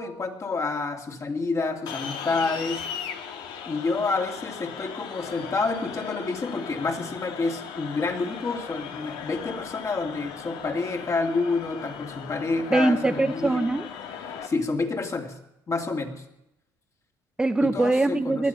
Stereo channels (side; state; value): both; normal; correlation 0.78